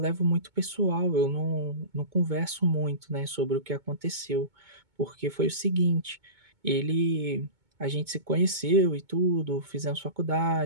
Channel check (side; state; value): left; late; 2.2 ms